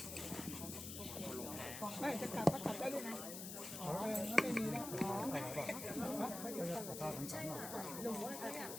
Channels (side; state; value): left; noise; hiss, 7 dB below the sound